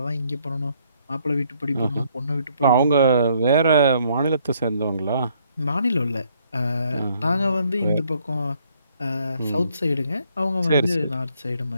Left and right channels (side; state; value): both; inverted; correlation -0.68